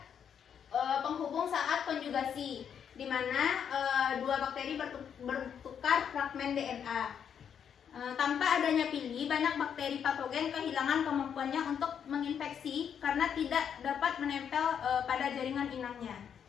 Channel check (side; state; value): right; quieter; 8.0 dB